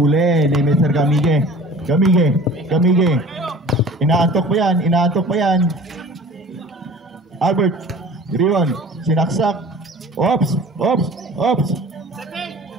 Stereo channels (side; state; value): both; normal; correlation 0.44